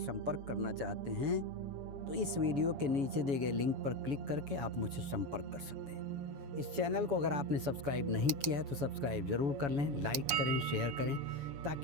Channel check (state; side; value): late; left; 7.1 ms